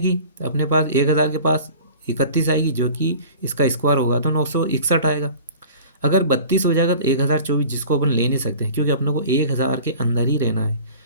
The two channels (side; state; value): both; inverted; correlation -0.42